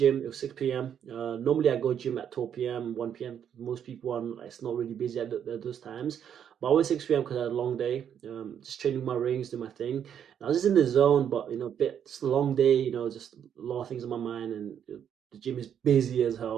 It was 6 p.m. Normally I go gym at 12 p.m., 1 p.m. Most people are it's not really busy at those times. But I went 6 p.m. because I had a long day. Just training my rings, do my thing. And I was just in the zone, but bit just a long day. Just a lot of things on my mind, and the gym is busy as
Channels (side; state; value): left; quieter; 8.8 dB